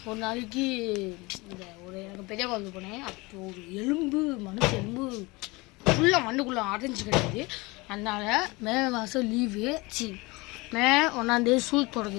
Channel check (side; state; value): right; quieter; 24.1 dB